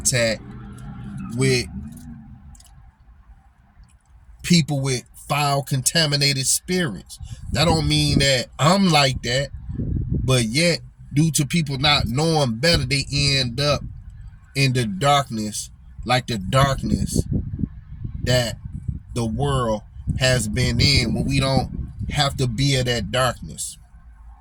with people with foul, contaminated spirits. That don't mean that I'm like that, but yet due to people not knowing better, they end up in the darkness, like the darkness that the world has been in, when we don't have to be in that darkness.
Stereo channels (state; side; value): identical; both; correlation 1.00